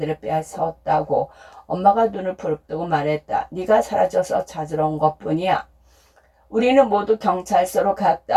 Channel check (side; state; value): both; identical; correlation 1.00